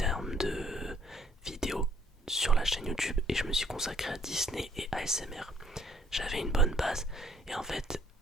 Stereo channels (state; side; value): normal; both; correlation 0.63